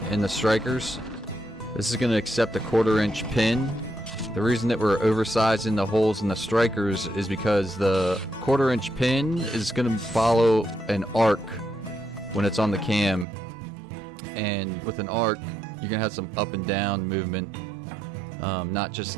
in the strikers. This is going to accept a 1/4 inch pin. The reason that we're oversizing the holes in the strikers is because the 1/4 inch pin is going to follow an arc when it's on the cam. And with an arc, you're going to have some up and down movement, not just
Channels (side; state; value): left; drops out; at 13.2 s